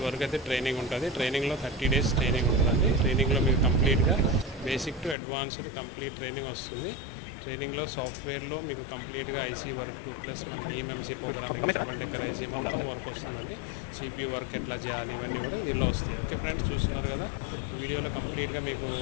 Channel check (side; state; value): right; drops out; at 5.2 s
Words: వరకు అయితే ట్రైనింగ్ ఉంటుంది. ట్రైనింగ్లో 30 days ట్రైనింగ్ ఉంటుందండి. ట్రైనింగ్లో మీకు కంప్లీట్గా basic to advanced complete training వస్తుంది. ట్రైనింగ్లో సాఫ్ట్వేర్లో మీకు కంప్లీట్గా ఐసీ వర్క్ ప్లస్ మనకి EMMC programming, double decker IC మొత్తం వర్క్ వస్తుందండి. సిపియూ వర్క్ ఎట్లా చేయాలి ఇవన్నీ కూడా దీనిలో వస్తాయి. ఓకే ఫ్రెండ్స్, చూస్తున్నారు కదా వీడియోలో కంప్లీట్గా మీకు